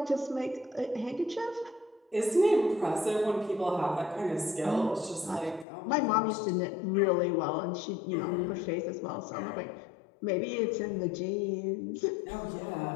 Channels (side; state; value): right; drops out; at 5.7 s